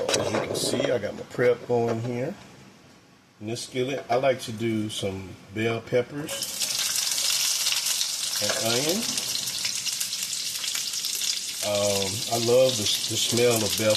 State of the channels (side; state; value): both; identical; correlation 1.00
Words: you can see, I got my prep going here. In this skillet, I like to do some bell peppers and onion. I love the smell of bell